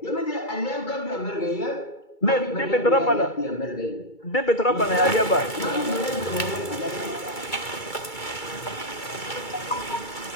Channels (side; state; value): right; late; 2.3 ms